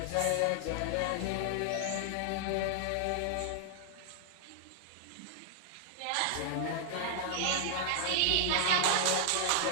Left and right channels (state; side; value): different; both; correlation 0.00